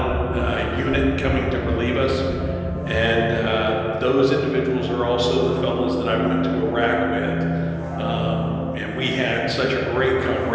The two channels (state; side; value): identical; both; correlation 1.00